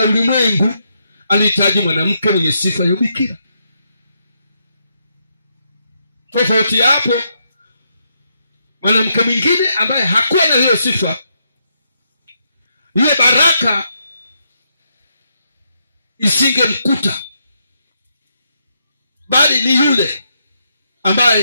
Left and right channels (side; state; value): both; inverted; correlation -0.79